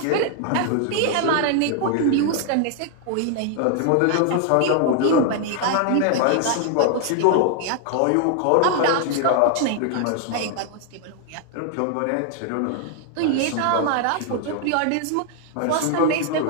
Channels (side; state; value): both; different; correlation 0.00